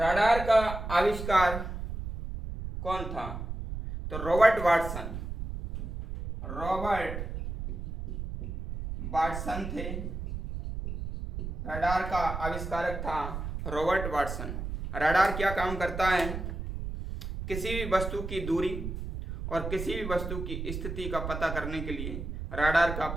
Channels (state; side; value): noise; right; rumble, 6 dB below the sound